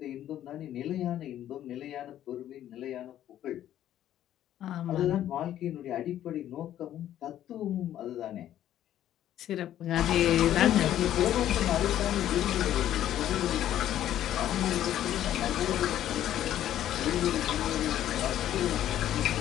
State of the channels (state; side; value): quieter; right; 11.8 dB